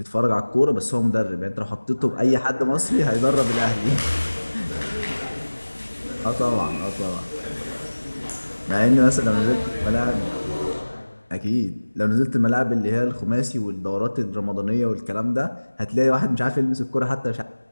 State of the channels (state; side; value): inverted; both; correlation -1.00